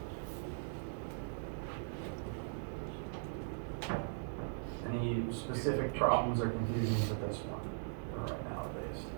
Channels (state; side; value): silent; left; digital silence